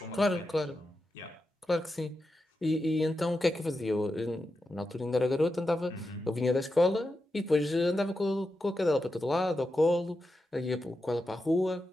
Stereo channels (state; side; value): normal; both; correlation 0.89